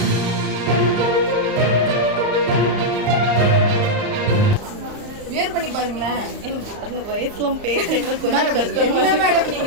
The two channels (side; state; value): left; late; 34 ms